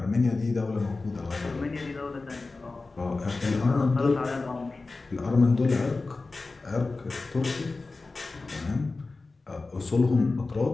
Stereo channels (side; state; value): right; quieter; 3.6 dB